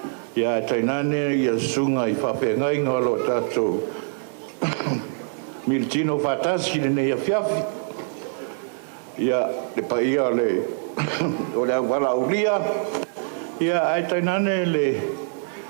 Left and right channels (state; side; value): silent; left; digital silence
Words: ya tainane ya sunga I fa fenga lo tato miltino fatasi nei a fiafi ya le paia le o le wala ulia ia ai tainane le